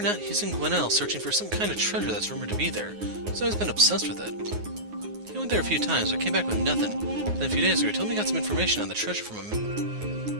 not, he's in Gwinnell searching for some kind of treasure that's rumored to be there. He's always been obsessed with it. He went there a few times, but came back with nothing. Then a few days ago, he told me he got some information on the treasure from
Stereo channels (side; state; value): left; late; 9.5 ms